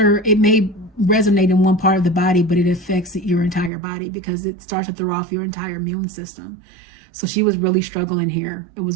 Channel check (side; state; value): left; drops out; at 3.7 s